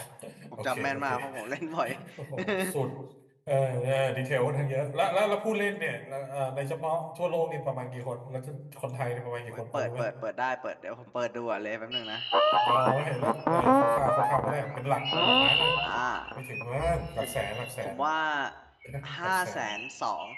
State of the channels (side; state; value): both; identical; correlation 1.00